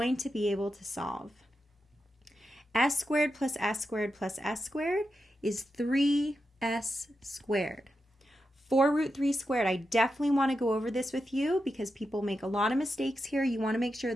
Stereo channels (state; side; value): normal; both; correlation 0.88